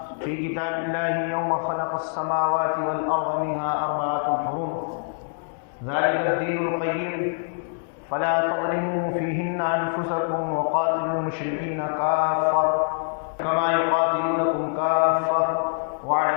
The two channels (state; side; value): silent; right; digital silence